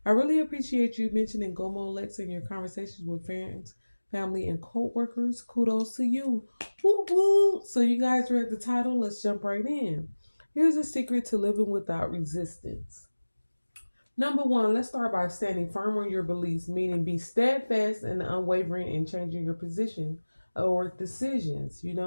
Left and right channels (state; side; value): inverted; both; correlation -1.00